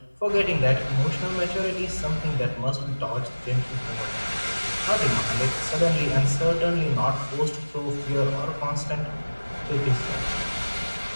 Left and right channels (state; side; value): inverted; both; correlation -1.00